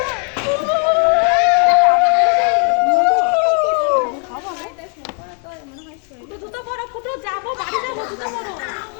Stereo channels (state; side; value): quieter; right; 37.5 dB